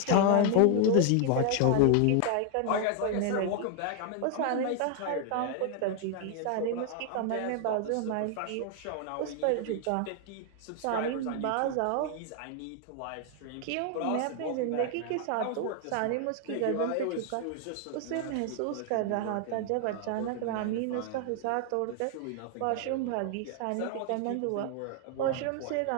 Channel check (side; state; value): both; different; correlation 0.00